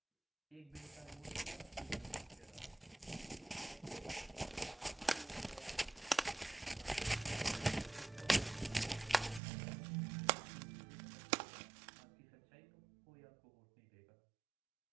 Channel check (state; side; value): drops out; left; at 9.4 s